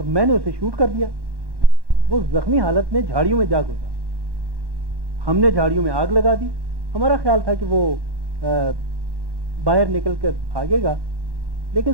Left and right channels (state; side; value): late; left; 1.1 ms